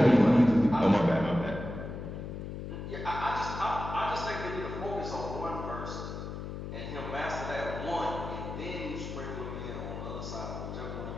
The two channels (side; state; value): left; noise; hum, 7 dB below the sound